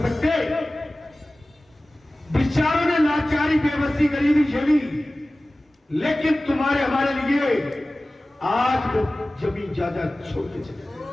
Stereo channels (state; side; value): normal; both; correlation 0.97